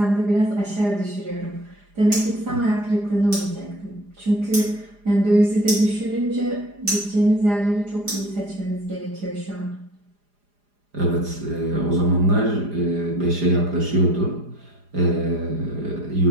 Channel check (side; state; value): left; late; 4.9 ms